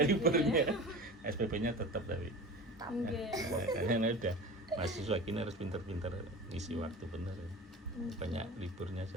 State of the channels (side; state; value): both; normal; correlation 0.34